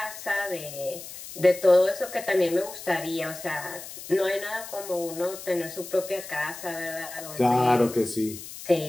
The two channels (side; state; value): left; noise; hiss, 12 dB below the sound